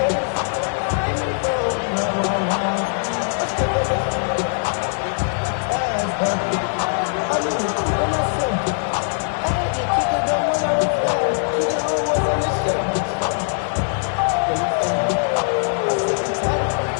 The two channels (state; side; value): silent; right; digital silence